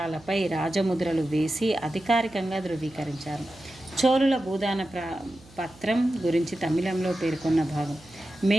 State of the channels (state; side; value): noise; right; hum, 24 dB below the sound